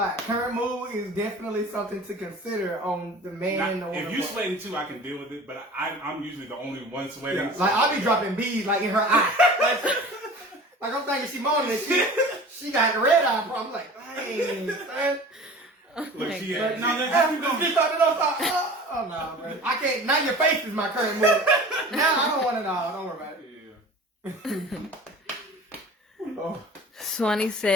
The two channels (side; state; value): both; normal; correlation 0.41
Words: Current mood is definitely something to consider on the man. Now, if you sweating too, I can deal with it. But I'm usually the only one sweating. Yeah. Like I'll be dropping beads like in her eye. Like I'm thinking she moaning and she got the red eye problem. I'm like, dang, son. Look, she But no, oh no, bro. I can't. Now your face is my current mood. Now I don't want it all. Don't worry about it. Yeah. Oh. Swanee